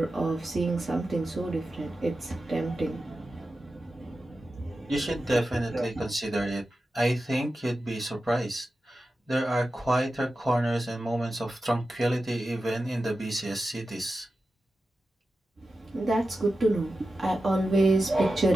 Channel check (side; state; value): both; normal; correlation 0.92